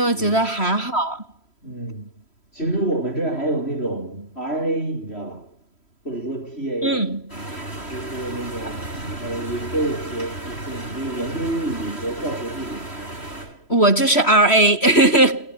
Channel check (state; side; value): late; right; 3.1 ms